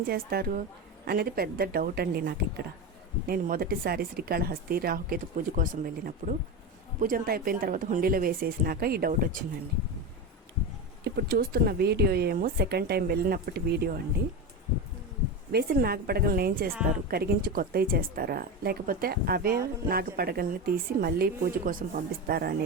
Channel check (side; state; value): both; normal; correlation 0.19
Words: చేస్తారు అనేది పెద్ద డౌట్ అండి నాకు. ఇక్కడ నేను మొదటిసారి శ్రీకాళహస్తి రాహుకేతు పూజ కోసం వెళ్ళినప్పుడు పూజ అంతా అయిపోయిన తర్వాత హుండీలో వేసేసినాక ఈ డౌట్ వచ్చిందండి. ఇప్పుడు చూస్తున్న వీడియో ఏమో సెకండ్ టైం వెళ్ళినప్పటి వీడియో అండి. వేసిన నాగపడగలను ఏం చేస్తారు, కరిగించి కొత్తవి చేస్తారా లేకపోతే అవే నాగపడగల్ని తీసి మళ్ళీ పూజ కోసం పంపిస్తారా